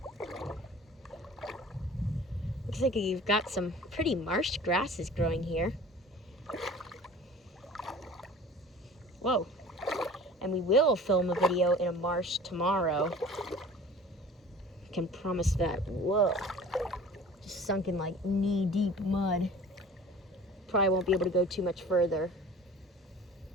Looks like you've got some pretty marsh grasses growing here. Whoa. And we will film a video in a marsh tomorrow. I can promise that. Whoa. Just sunk in like knee-deep mud. Probably won't be able to go too much further.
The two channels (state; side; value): normal; both; correlation 0.44